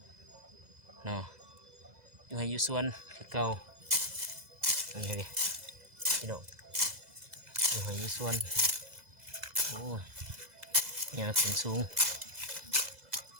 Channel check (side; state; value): left; late; 2.0 ms